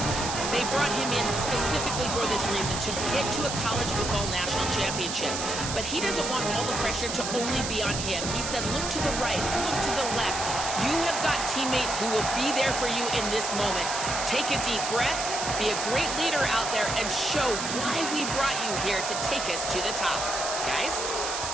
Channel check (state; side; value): noise; right; hiss, 4 dB below the sound